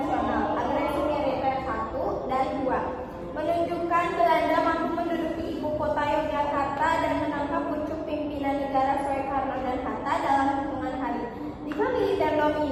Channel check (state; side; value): identical; both; correlation 1.00